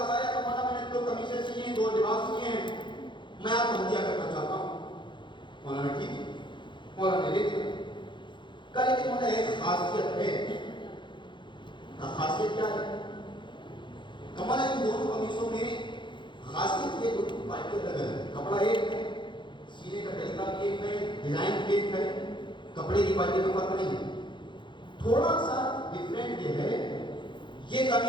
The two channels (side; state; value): right; late; 0.23 ms